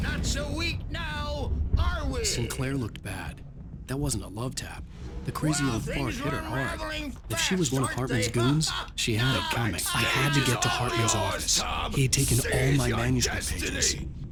Not so weak now, are we? Sinclair looked bad. That wasn't a love tap. The crazy old fart hit her hard. If she was one of Hartman's goons, she had it coming. I had to get to Hartman's office. He had taken all my manuscript pages.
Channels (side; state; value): both; identical; correlation 1.00